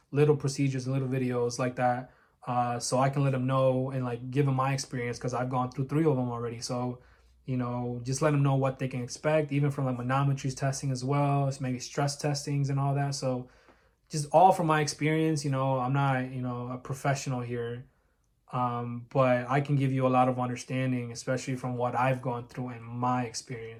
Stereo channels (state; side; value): identical; both; correlation 1.00